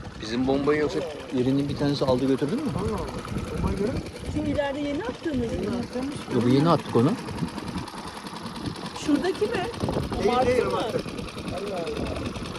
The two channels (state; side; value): identical; both; correlation 1.00